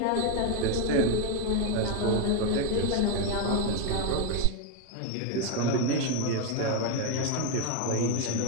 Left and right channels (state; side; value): different; both; correlation 0.02